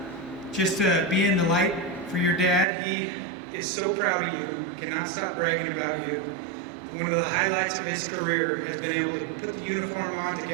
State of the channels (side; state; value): left; drops out; at 2.7 s